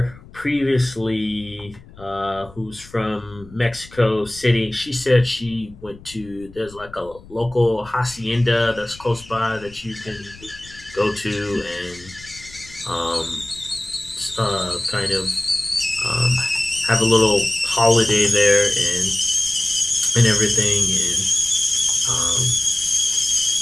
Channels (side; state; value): left; noise; rumble, 21 dB below the sound